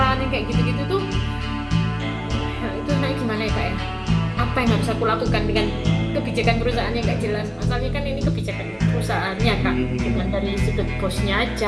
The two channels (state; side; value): identical; both; correlation 1.00